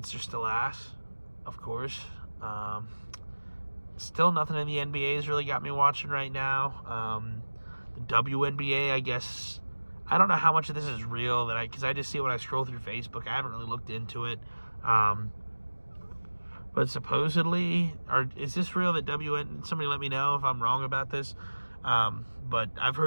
are still ass, of course. Still nothing in the NBA has really got me watching right now. The WNBA, I guess, I don't know how much of this is real, because I just see it when I scroll through Facebook. I haven't really looked into it. But supposedly, is this real that somebody let me know if I'm wrong about this. But I've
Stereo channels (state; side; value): inverted; both; correlation -1.00